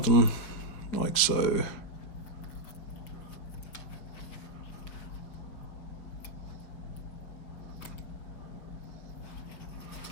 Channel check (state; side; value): late; right; 5.4 ms